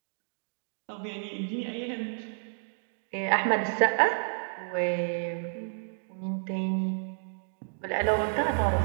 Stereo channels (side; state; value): left; silent; digital silence